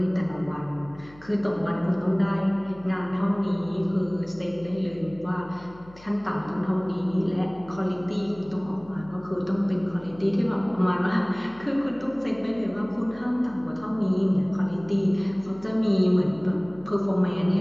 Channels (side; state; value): left; noise; hum, 23 dB below the sound